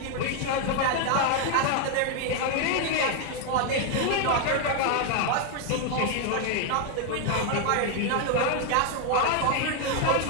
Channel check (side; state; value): both; different; correlation 0.01